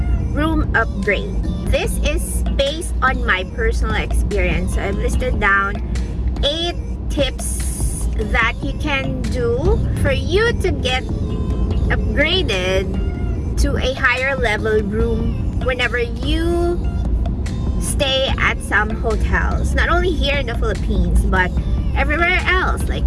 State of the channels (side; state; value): both; identical; correlation 1.00